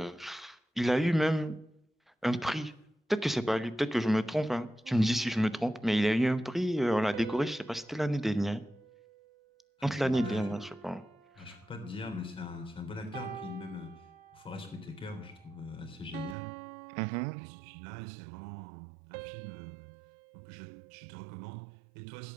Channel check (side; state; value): left; drops out; at 16.4 s